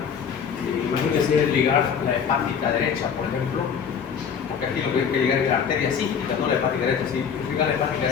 Imagínense ligar la hepática derecha, por ejemplo, porque aquí lo que hay que ligar es la arteria cística, no la hepática derecha. Si ligar la hepática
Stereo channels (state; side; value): quieter; right; 7.1 dB